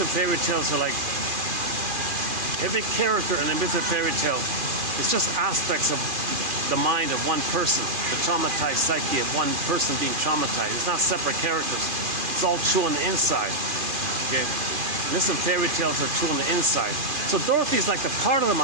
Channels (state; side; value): late; left; 2.4 ms